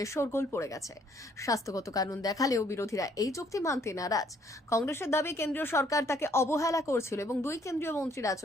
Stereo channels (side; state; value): both; normal; correlation 0.65